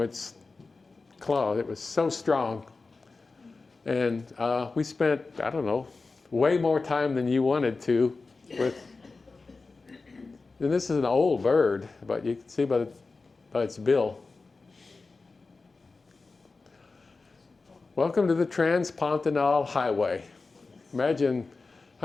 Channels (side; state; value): right; quieter; 3.9 dB